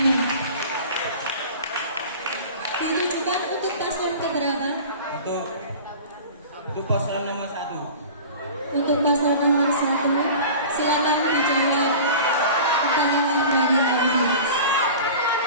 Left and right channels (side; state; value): both; inverted; correlation -0.38